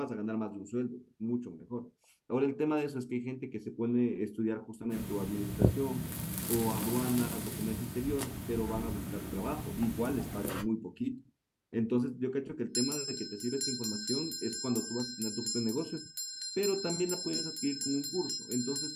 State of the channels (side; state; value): both; identical; correlation 1.00